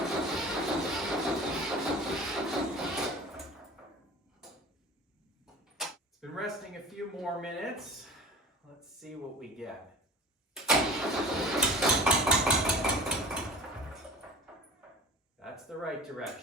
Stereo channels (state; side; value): normal; both; correlation 0.38